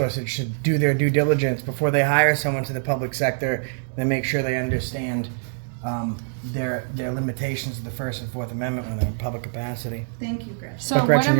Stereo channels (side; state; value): left; silent; digital silence